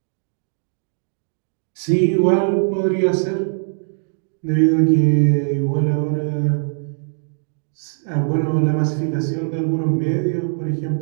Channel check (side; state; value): left; silent; digital silence